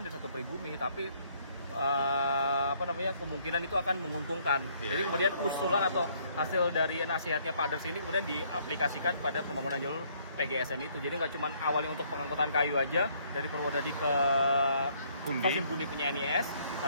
atau pribumi, tapi kemungkinan itu akan menguntungkan. Jadi kemudian usulan atau hasil dari nasihatnya Pak Derks ini kemudian diaplikasikan pada pembangunan jalur PGSM itu. Jadi nggak cuma awalnya untuk pengangkutan kayu aja dari Purwodadi ke stasiun Gundi punya NIS,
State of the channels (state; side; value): inverted; both; correlation -0.66